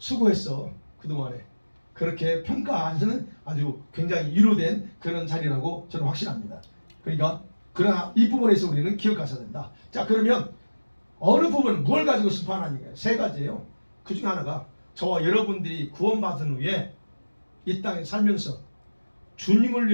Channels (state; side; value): inverted; both; correlation -1.00